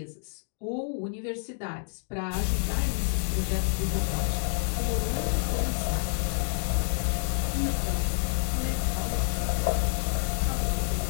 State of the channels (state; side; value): silent; right; digital silence